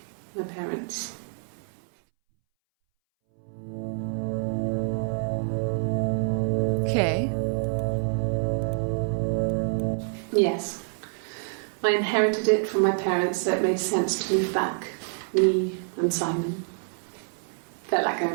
my parents. Okay. Yes. I inherited it from my parents, so it made sense to move back. Me and Simon. Felt like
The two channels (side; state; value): left; silent; 60 dB below the other